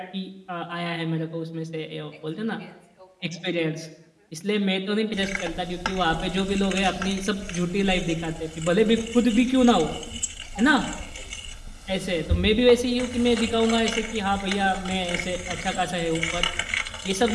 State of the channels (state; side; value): identical; both; correlation 1.00